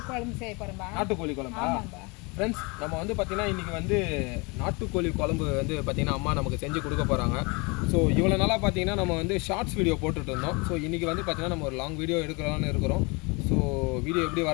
குழம்பு செய்ய போகிறோம்பா. நாட்டுக்கோழி குழம்பா? ஃப்ரெண்ட்ஸ், நம்ம வந்து பார்த்தீங்கன்னா இன்றைக்கி வந்து நாட்டுக்கோழி குழம்பு வந்து பார்த்தீங்கன்னா அம்மா நமக்கு செஞ்சு கொடுக்க போகிறாங்க. ஸோ இவ்வளோ நாளாக பார்த்தீங்கன்னா நம்ம வந்து ஷார்ட்ஸ் வீடியோ போட்டுட்டு இருந்தோம். ஸோ இன்றைக்கி வந்து பார்த்தீங்கன்னா நம்ம ஒரு லாங் வீடியோ எடுக்கலாம்னு இருக்கிறோம். ஸோ வீடியோ எப்படி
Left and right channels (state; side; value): quieter; right; 28.7 dB